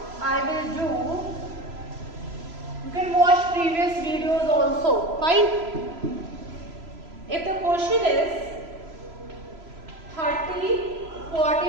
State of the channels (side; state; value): left; late; 3.0 ms